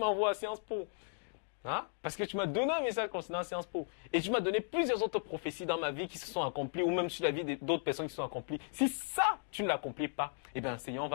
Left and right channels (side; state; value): right; silent; digital silence